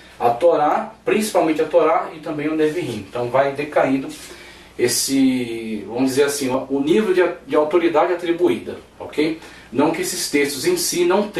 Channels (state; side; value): identical; both; correlation 1.00